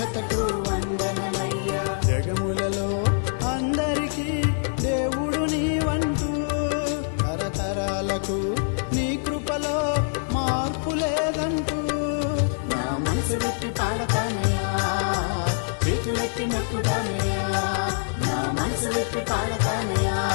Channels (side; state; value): right; silent; 62 dB below the other